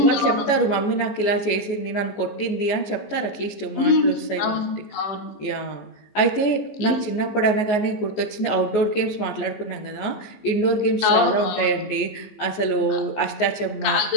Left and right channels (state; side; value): late; right; 14 ms